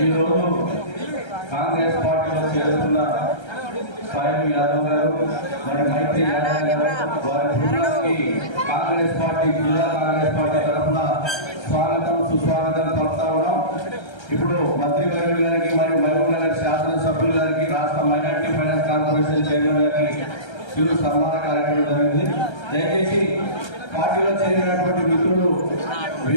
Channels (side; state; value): right; late; 1.3 ms